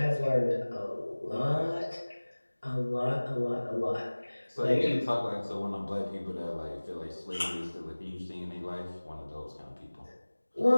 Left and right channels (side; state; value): both; inverted; correlation -1.00